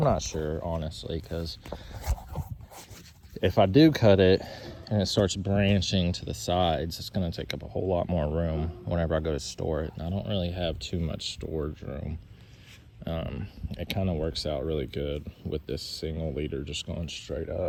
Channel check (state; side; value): identical; both; correlation 1.00